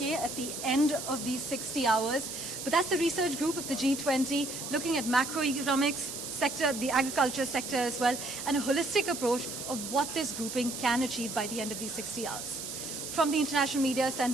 at the end of these 60 hours. But that's the research group of the G20 looking at macroeconomics sector, the agriculture sector as well, and a holistic approach of what this grouping can achieve by the end of these 60 hours. From the International Media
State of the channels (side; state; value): right; noise; hiss, 7 dB below the sound